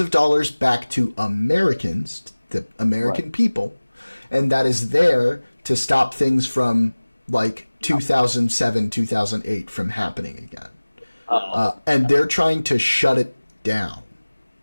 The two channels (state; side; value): inverted; both; correlation -1.00